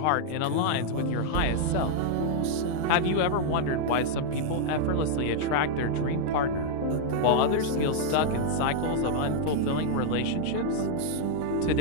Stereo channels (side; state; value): both; different; correlation -0.01